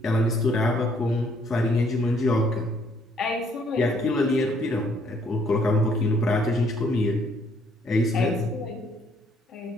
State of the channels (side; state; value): both; normal; correlation 0.66